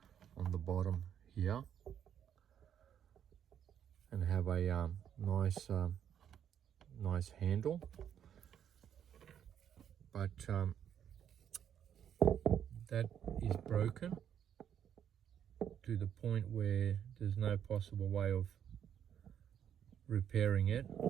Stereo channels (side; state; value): left; quieter; 9.2 dB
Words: on the bottom here and have a nice handle, but that is broken to the point where there's no possible way of repairing it,